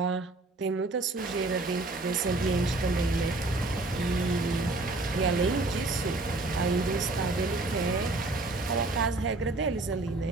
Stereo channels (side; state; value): left; quieter; 3.0 dB